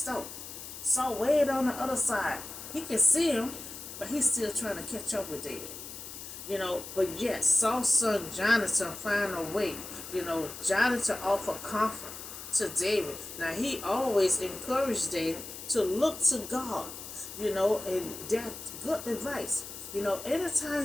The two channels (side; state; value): left; noise; hiss, 11 dB below the sound